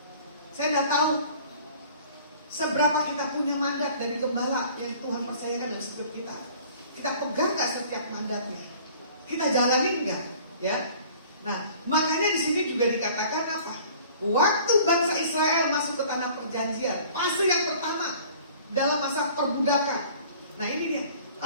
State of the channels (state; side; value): inverted; both; correlation -0.49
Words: Saya tidak tahu seberapa kita punya mandat dari gembala yang Tuhan percayakan dalam hidup kita. Kita pegang nggak setiap mandatnya? Kita jalani nggak? Ya. Nah, makanya di sini juga dikatakan apa? Waktu bangsa Israel masuk ke tanah perjanjian, fase yang pertama dalam masa perbudakan. Nah ini dia,